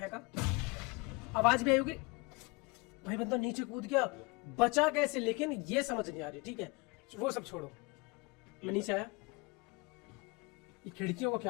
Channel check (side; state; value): right; quieter; 27.5 dB